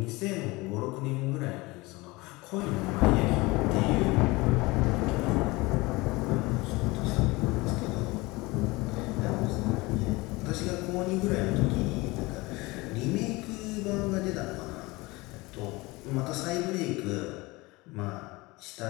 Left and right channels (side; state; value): right; quieter; 22.8 dB